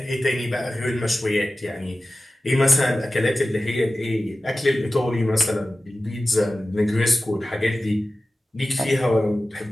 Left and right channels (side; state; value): both; normal; correlation 0.95